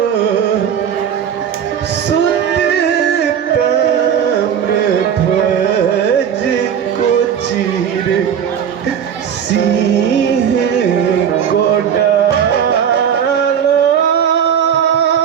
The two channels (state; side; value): quieter; left; 8.4 dB